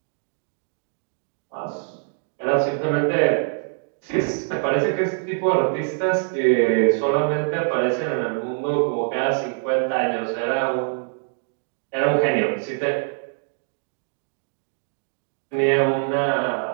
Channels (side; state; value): left; silent; 63 dB below the other